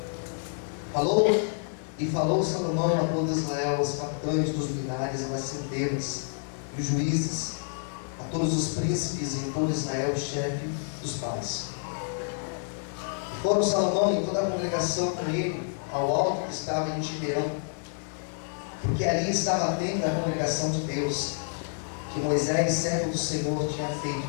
Falou Salomão a todo Israel, os capitães dos milhares, as centenas, e os juízes, a todos os príncipes e em todo Israel, o chefe dos pais. E foram Salomão e toda a congregação com ele ao alto que estava em Gibeão, porque ali estava a tenda da congregação de Deus, que Moisés, servo do Senhor, tinha feito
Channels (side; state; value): right; silent; digital silence